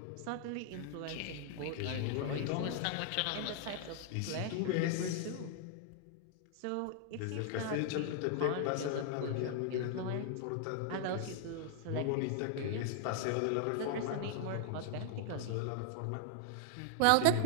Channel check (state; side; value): different; both; correlation 0.00